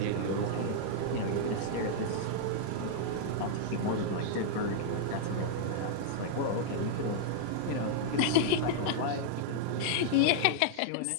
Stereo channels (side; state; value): both; different; correlation -0.01